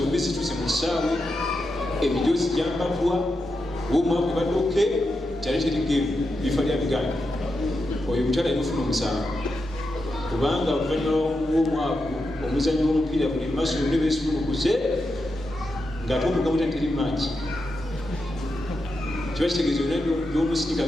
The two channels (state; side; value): normal; both; correlation 0.87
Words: zituuse mu kisaawe emijoozi gyambatwa womwaku baddoke kyali terigemu bifa lya biganda oyo mukyala yamufuna omusango kubanga oluvannyuma w'omwaku omuzannyo w'omupiira buli maaso yonna beesumulukuze ng'ate omugamu teri maaki kiba kitegeeza yonna gy'omusirika